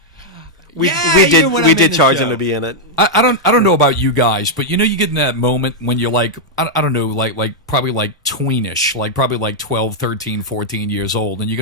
We even when I'm did in the charge show. him to be in it. I don't know about you guys, but you get in that moment when you're like, I don't know, probably tweenish, probably 12, 13, 14 years old, and you're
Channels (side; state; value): both; normal; correlation -0.03